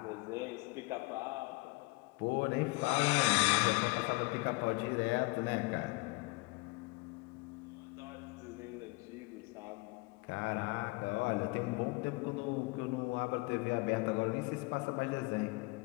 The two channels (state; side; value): quieter; right; 24.4 dB